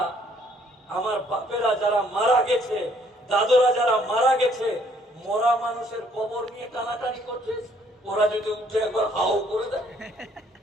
আমার বাপেরা যারা মারা গেছে, দাদুরা যারা মারা গেছে, মরা মানুষের কবর নিয়ে টানাটানি করছিস, ওরা যদি উঠে একবার হাও করে দেয়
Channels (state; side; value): normal; both; correlation 0.64